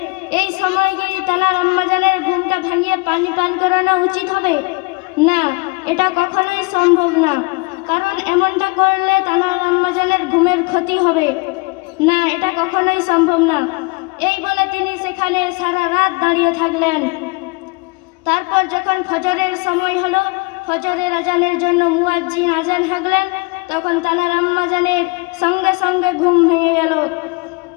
এই সময় কি তানার আম্মাজানের ঘুমটা ভাঙিয়ে পানি পান করানো উচিত হবে? না, এটা কখনোই সম্ভব না, কারণ এমনটা করলে তানার আম্মাজানের ঘুমের ক্ষতি হবে। না, এটা কখনোই সম্ভব না। এই বলে তিনি সেখানে সারা রাত দাঁড়িয়ে থাকলেন। তারপর যখন ফজরের সময় হলো, ফজরের আজানের জন্য মুয়াজ্জিন আজান হাঁকলেন, তখন তানার আম্মাজানের সঙ্গে সঙ্গে ঘুম ভেঙে গেল।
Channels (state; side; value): quieter; right; 28.7 dB